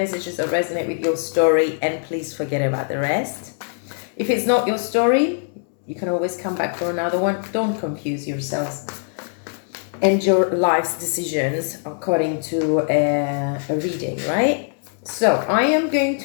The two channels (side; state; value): right; silent; digital silence